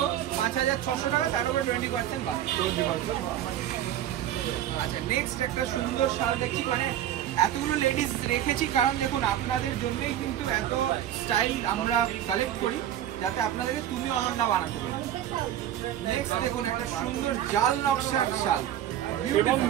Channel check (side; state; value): left; quieter; 11.5 dB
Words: 5600 টাকা, তার উপরে 20% বাদ। আচ্ছা, নেক্সট একটা সুন্দর শাল দেখছি, মানে এতগুলো লেডিস রেখেছি কারণ দেখুন আপনাদের জন্যই কিন্তু এত স্টাইল আমরা কালেক্ট করি, যাতে আপনাদেরকে তুমি অনন্যা বানাতে পারি। নেক্সট দেখুন একটা সুন্দর জাল নকশার শাল, এবং